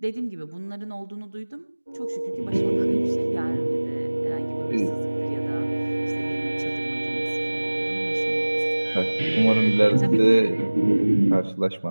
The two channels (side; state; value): both; inverted; correlation -1.00